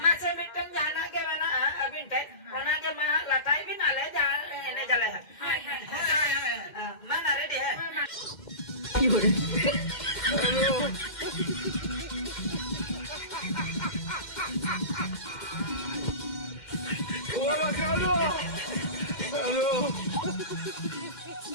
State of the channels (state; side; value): late; right; 2.1 ms